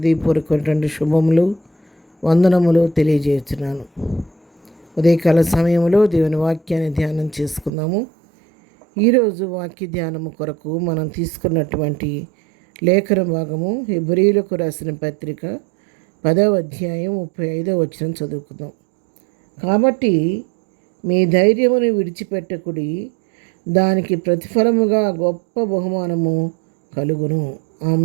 శుభములు, వందనములు తెలియజేస్తున్నాను. ఉదయకాల సమయంలో దేవుని వాక్యాన్ని ధ్యానం చేసుకుందాము. ఈరోజు వాక్య ధ్యానము కొరకు మనం తీసుకున్నటువంటి లేఖన భాగము హెబ్రీయులకు రాసిన పత్రిక 10వ అధ్యాయం 35వ వచనం చదువుకుందాం. కాబట్టి మీ ధైర్యమును విడిచిపెట్టకుడి, దానికి ప్రతిఫలముగా గొప్ప బహుమానము కలుగును.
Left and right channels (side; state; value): left; drops out; at 7.7 s